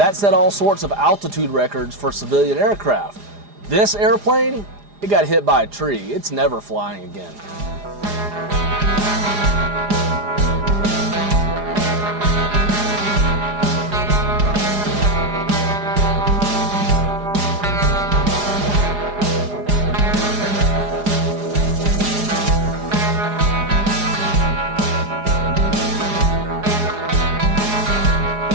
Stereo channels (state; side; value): late; left; 4.9 ms